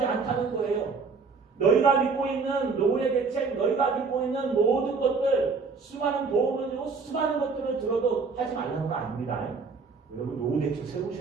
않다는 거예요. 너희가 믿고 있는 노후의 대책, 너희가 믿고 있는 모든 것들, 수많은 보험을 들고 수많은 것들을 들어도 하지 말라는 거 아닙니다. 여러분 노후 대책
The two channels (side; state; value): left; quieter; 4.7 dB